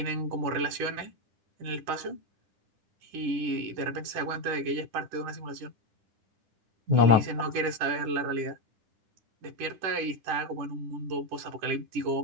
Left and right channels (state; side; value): late; left; 10 ms